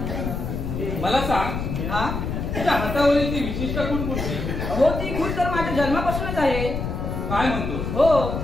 मला सांग, तुझ्या हातावरील ती विशिष्ट खूण कोणती? हो ती खूण तर माझ्या जन्मापासूनच आहे. काय म्हणतो? हो.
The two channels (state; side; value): noise; left; rumble, 3 dB below the sound